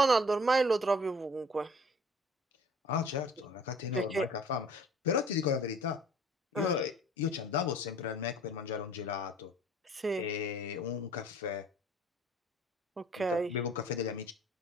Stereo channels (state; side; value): normal; both; correlation 0.50